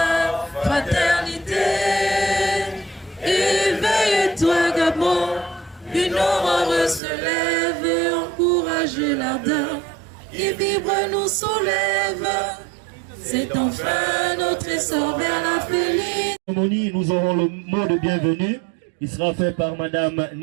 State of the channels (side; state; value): left; drops out; at 7.0 s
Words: fraternité, éveille-toi Gabon, une aurore se lève et encourage l'ardeur qui vibre nous soulève. C'est enfin notre essor vers la félicité. Nous aurons le mot de bienvenue. Il sera fait par Madame